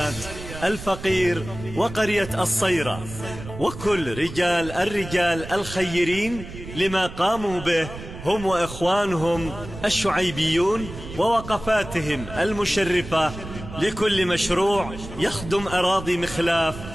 الفقير وقرية الصيرة، وكل الرجال الخيرين لما قاموا به هم وإخوانهم الشعيبيون ووقفاتهم المشرفة لكل مشروع يخدم أراضي مخلاف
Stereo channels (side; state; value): right; noise; rumble, 12 dB below the sound